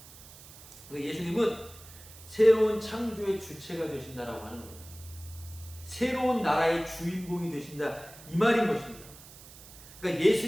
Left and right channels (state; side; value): noise; right; hiss, 19 dB below the sound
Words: 예수님은 새로운 창조의 주체가 되신다라고 하는 거예요. 새로운 나라의 주인공이 되신다 이 말인 것입니다. 그러니까